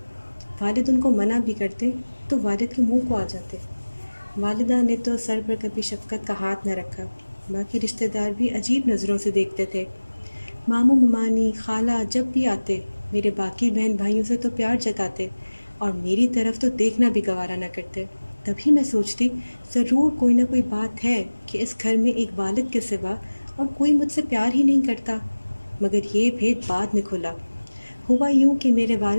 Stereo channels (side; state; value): both; inverted; correlation -1.00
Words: والد ان کو منع بھی کرتے تو والد کے منہ کو آ جاتے۔ والدہ نے تو سر پر کبھی شفقت کا ہاتھ نہ رکھا، باقی رشتہ دار بھی عجیب نظروں سے دیکھتے تھے۔ ماموں ممانی خالہ جب بھی آتے میرے باقی بہن بھائیوں سے تو پیار جتاتے اور میری طرف تو دیکھنا بھی گوارا نہ کرتے۔ تبھی میں سوچتی، ضرور کوئی نہ کوئی بات ہے کہ اس گھر میں ایک والد کے سوا اور کوئی مجھ سے پیار ہی نہیں کرتا، مگر یہ بھید بعد میں کھلا۔ ہوا یوں کہ میرے